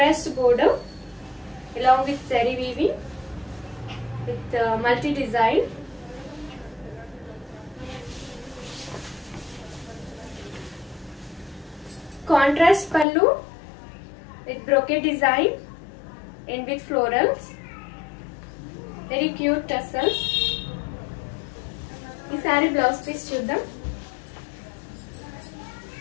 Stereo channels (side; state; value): right; drops out; at 13.1 s